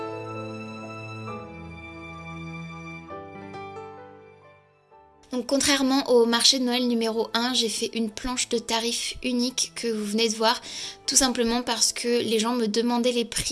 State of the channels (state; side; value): identical; both; correlation 1.00